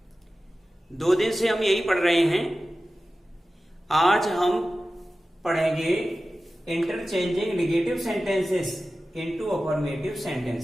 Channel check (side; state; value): both; normal; correlation 0.95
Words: 2 दिन से हम यही पढ़ रहे हैं। आज हम पढ़ेंगे interchanging negative sentences into affirmative